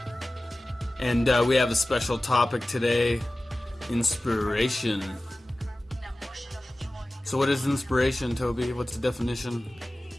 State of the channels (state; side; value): normal; both; correlation 0.96